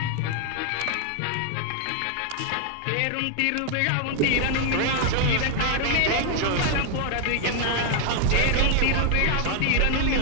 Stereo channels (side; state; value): both; different; correlation 0.00